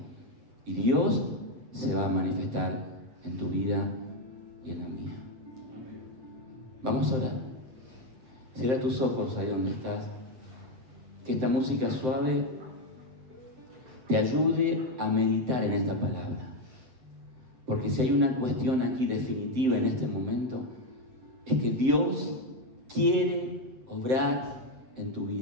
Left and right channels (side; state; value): left; late; 7.8 ms